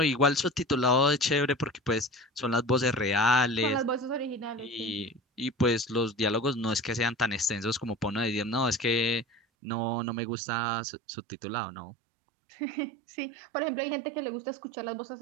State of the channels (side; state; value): left; drops out; at 9.4 s